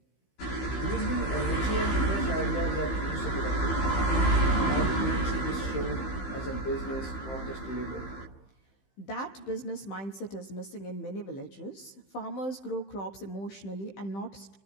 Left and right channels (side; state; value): right; late; 15 ms